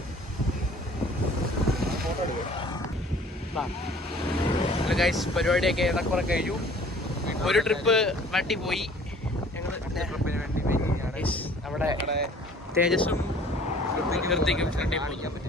Hello guys, പരിപാടിയൊക്കെ ഏറെക്കുറെ കഴിഞ്ഞു. ഒരു ട്രിപ്പ് വണ്ടി പോയി. ഞങ്ങൾ അവിടെ തേജസ്സും കൃത്യക്കും കാണിക്കാൻ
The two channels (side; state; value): both; normal; correlation 0.52